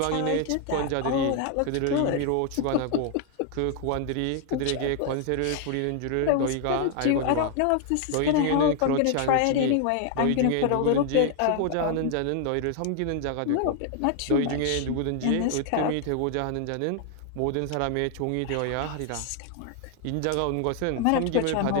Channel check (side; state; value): both; different; correlation 0.00